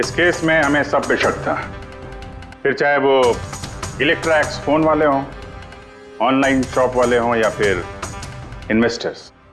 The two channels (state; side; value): identical; both; correlation 1.00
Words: केस में हमें सब पे शक था, फिर चाहे वो इलेक्ट्रैक्स फोन वाले हों, ऑनलाइन शॉप वाले हों या फिर इन्वेस्टर्स।